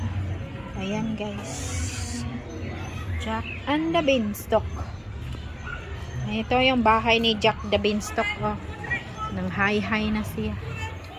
Ayan guys. Jack and the Beanstalk. Ito yung bahay ni Jack the Beanstalk. Oh. Nang high na siya.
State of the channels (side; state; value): both; identical; correlation 1.00